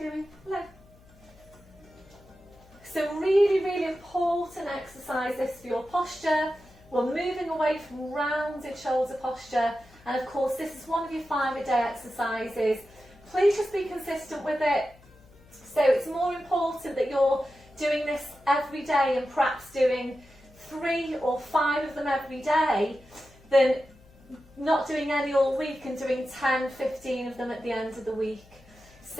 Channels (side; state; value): left; noise; hum, 26 dB below the sound